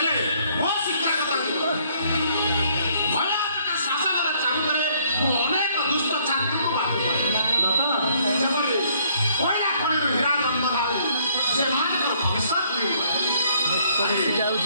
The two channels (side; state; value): both; inverted; correlation -0.65